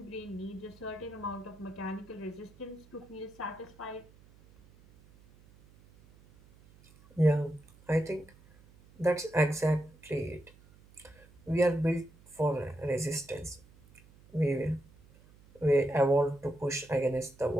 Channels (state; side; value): noise; right; hum, 25 dB below the sound